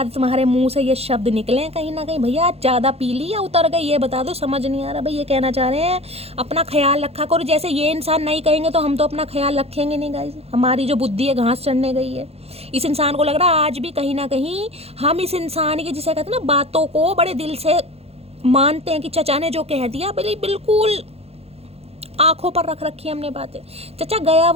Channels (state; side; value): late; left; 0.29 ms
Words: तुम्हारे मुंह से ये शब्द निकले कहीं ना कहीं। भैया ज़्यादा पी ली या उतर गई, ये बता दो, समझ नहीं आ रहा भाई। ये कहना चाह रहे हैं अपना ख्याल रखा करो। जैसे ये इंसान नहीं कहेंगे तो हम तो अपना ख्याल रखेंगे नहीं गाइस। हमारी जो बुद्धि है घास चढ़ने गई है। इस इंसान को लग रहा है आज भी कहीं ना कहीं हम इस इंसान की, जिसे कहते हैं ना, बातों को बड़े दिल से मानते हैं कि चचा ने जो कह दिया बिल्कुल आंखों पर रख रखी हमने बातें। चचा गया